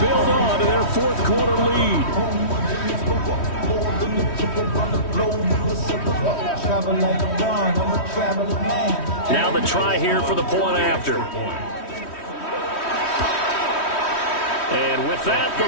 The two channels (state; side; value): late; right; 3.1 ms